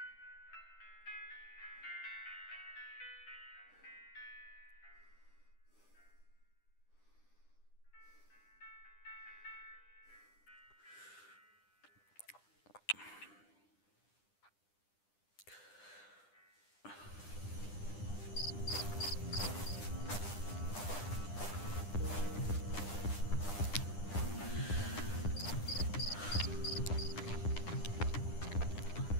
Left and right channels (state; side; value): late; right; 9.9 ms